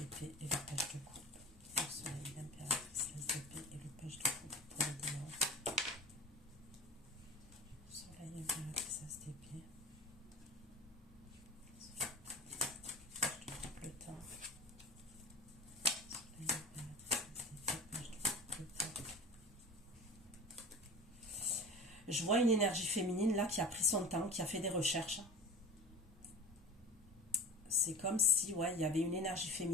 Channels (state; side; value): normal; both; correlation 0.35